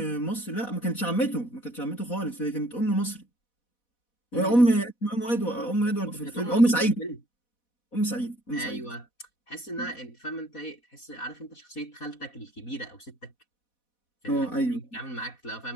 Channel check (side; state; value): right; late; 4.1 ms